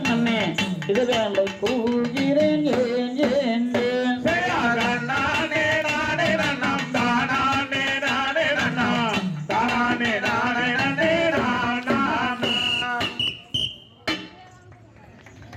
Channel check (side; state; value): both; identical; correlation 1.00